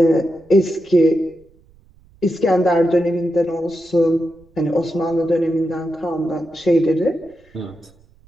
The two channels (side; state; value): right; noise; rumble, 30 dB below the sound